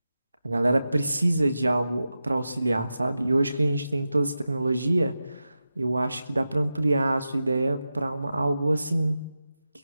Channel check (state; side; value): inverted; both; correlation -0.92